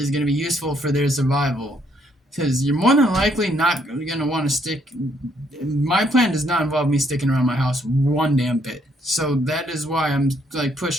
going to be useful for their survival. Because you're more than likely not going to want to stick. My plan does not involve me sticking around my house one damn bit. So that is why I'm like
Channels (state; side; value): normal; both; correlation 0.70